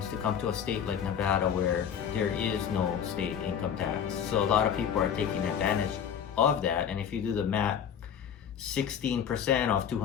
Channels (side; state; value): right; quieter; 8.3 dB